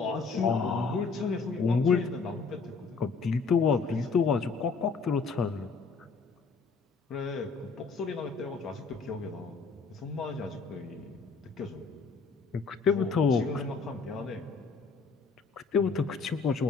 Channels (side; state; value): right; quieter; 4.7 dB